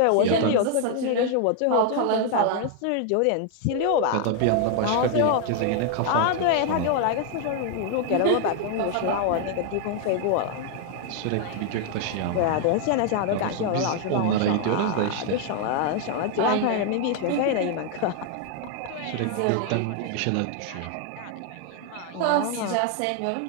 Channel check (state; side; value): different; both; correlation 0.00